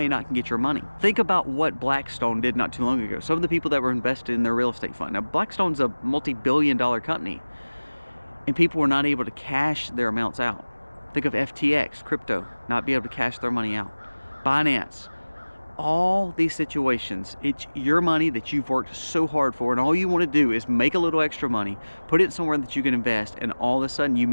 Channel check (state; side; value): inverted; both; correlation -1.00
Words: not get your money? Think about what Blackstone did not too long ago. Some of the people that were invested in their real estate fund. Now, Blackstone's a multi-billion-dollar company, and people were not able to cash their amounts out. Think of FTX, crypto, not be able to cash their money out. Binance. All these situations, it's your money that you've worked so hard for, and all you want to do is make a little extra money, put it somewhere that you can invest, and all of a sudden you